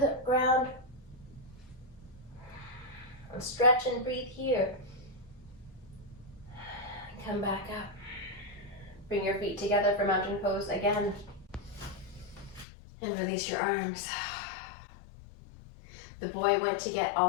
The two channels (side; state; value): right; drops out; at 12.7 s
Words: ground. And stretch and breathe here. And come back up. Bring your feet together for mountain pose again. And release your arms. The boy went to get